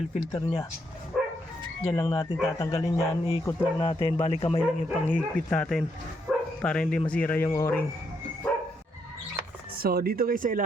filter nya. Diyan lang natin tatanggalin yan, iikot lang natin, bali kamay lang yung panghigpit natin para hindi masira yung o-ring. So dito guys sa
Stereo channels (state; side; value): normal; both; correlation 0.76